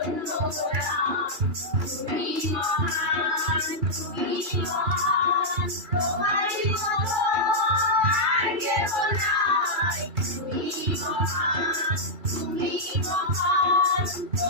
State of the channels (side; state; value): left; late; 2.3 ms